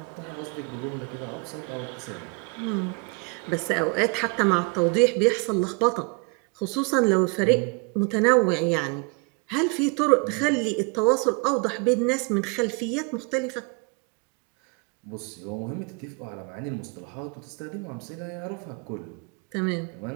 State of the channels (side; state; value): left; quieter; 32.8 dB